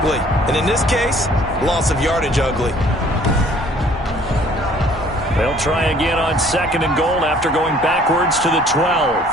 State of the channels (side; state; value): both; normal; correlation 0.56